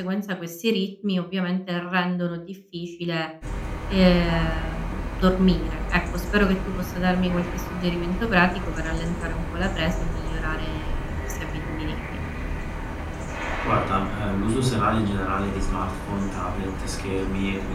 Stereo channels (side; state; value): both; identical; correlation 1.00